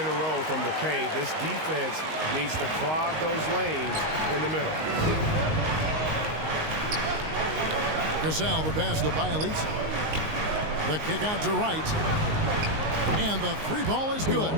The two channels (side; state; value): left; late; 19 ms